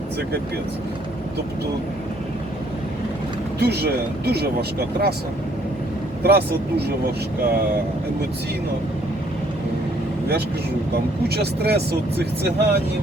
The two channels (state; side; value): normal; both; correlation 0.64